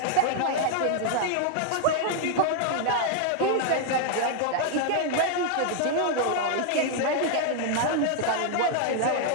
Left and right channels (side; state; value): both; different; correlation 0.00